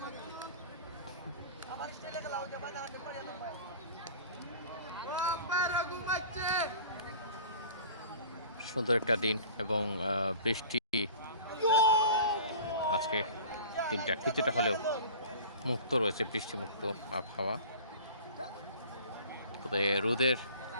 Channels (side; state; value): both; inverted; correlation -0.42